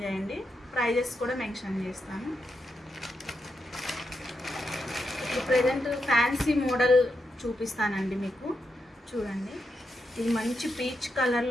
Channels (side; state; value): both; normal; correlation 0.84